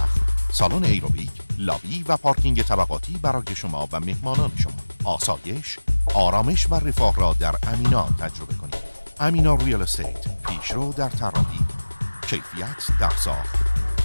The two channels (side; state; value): both; inverted; correlation -1.00